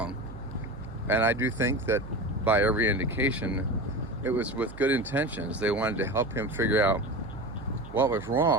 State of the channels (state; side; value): noise; right; hum, 15 dB below the sound